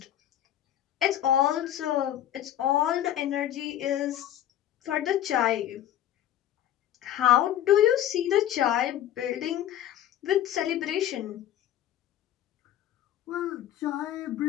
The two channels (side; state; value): right; quieter; 11.7 dB